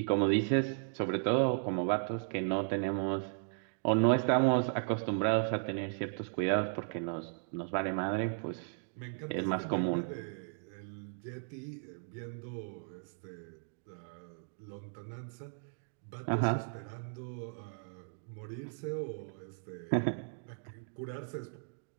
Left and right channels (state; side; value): silent; left; digital silence